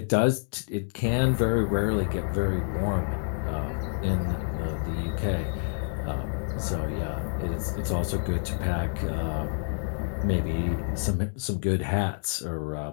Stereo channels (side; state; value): right; silent; digital silence